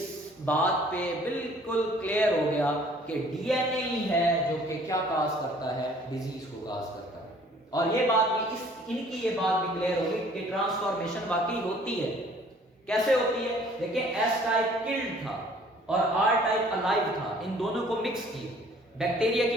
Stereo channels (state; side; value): normal; both; correlation 0.56